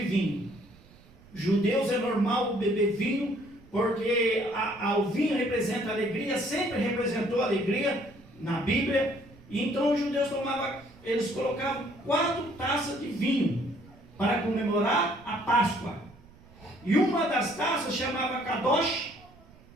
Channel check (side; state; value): right; noise; rumble, 24 dB below the sound